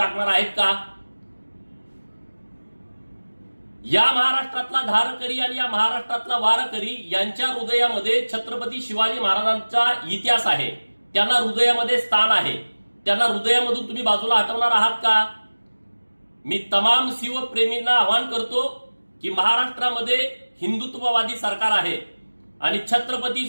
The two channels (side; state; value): both; inverted; correlation -1.00